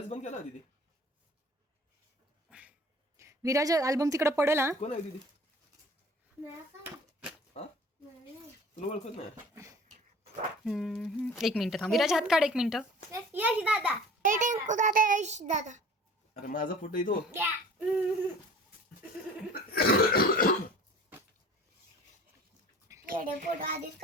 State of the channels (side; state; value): both; normal; correlation 0.45